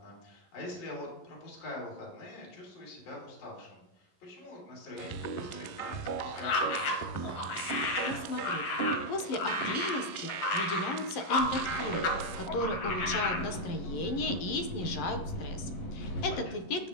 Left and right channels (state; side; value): late; right; 11 ms